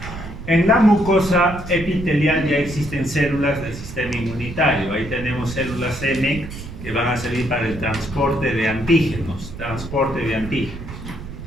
En la mucosa epitelial ya existen células del sistema inmunitario. Ahí tenemos células M que van a servir para el transporte de antígenos,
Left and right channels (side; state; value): right; noise; rumble, 11 dB below the sound